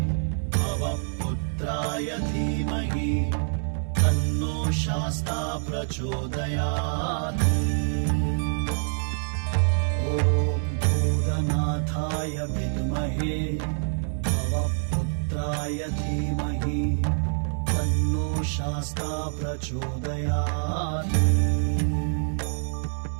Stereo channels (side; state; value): left; silent; digital silence